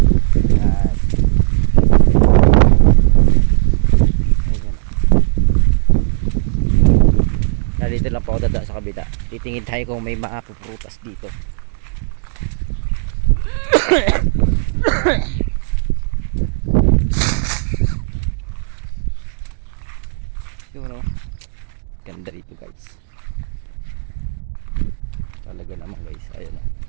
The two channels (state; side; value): silent; left; digital silence